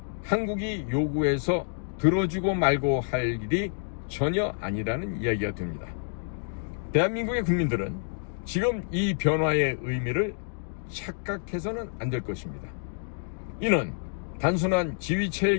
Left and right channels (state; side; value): silent; right; digital silence